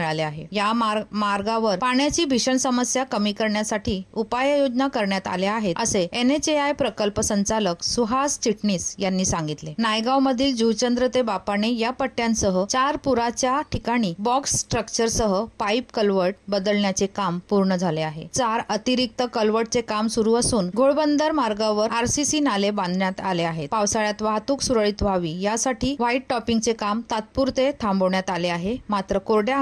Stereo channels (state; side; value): identical; both; correlation 1.00